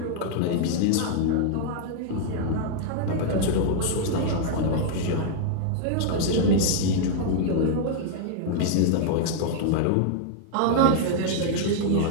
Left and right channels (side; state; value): both; different; correlation -0.01